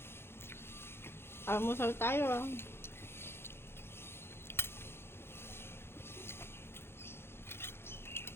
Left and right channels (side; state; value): right; late; 0.11 ms